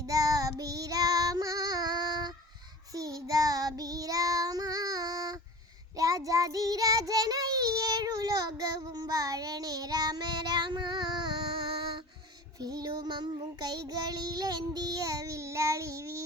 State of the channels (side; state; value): both; normal; correlation 0.38